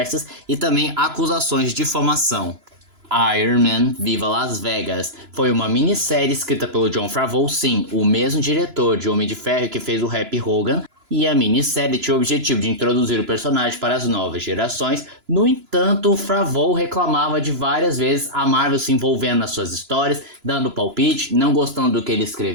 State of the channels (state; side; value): late; left; 2.9 ms